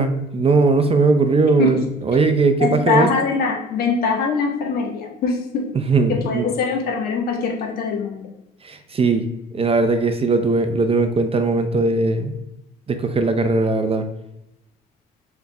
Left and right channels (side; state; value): both; normal; correlation 0.49